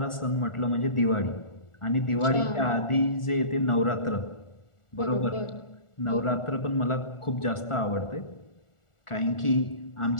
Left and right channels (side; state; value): right; late; 1.4 ms